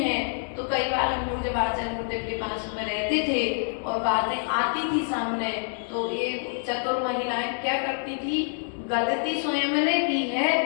तो कई बार हम लोग जब आचार्य गुरुदेव के पास में रहते थे और बातें आती थी सामने, तो ये चतुर महिलाएं क्या करती थी, गलती स्वयं ने की है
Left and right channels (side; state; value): right; silent; digital silence